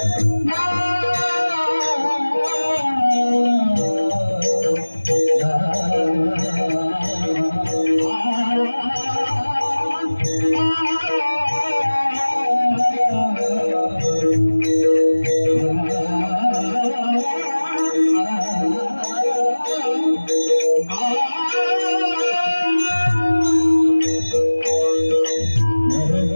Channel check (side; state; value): both; inverted; correlation -1.00